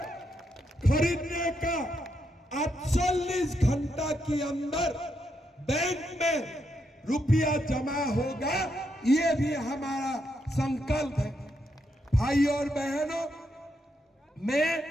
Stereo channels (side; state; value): both; normal; correlation 0.80